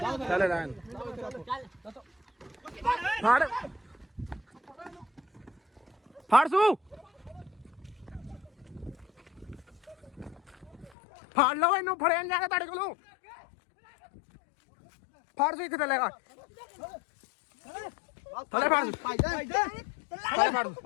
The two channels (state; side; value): drops out; right; at 10.9 s